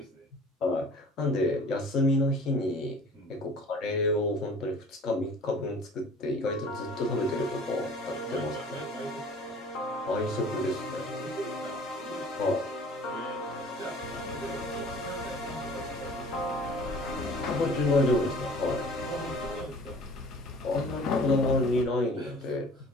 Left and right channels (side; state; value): both; normal; correlation 0.47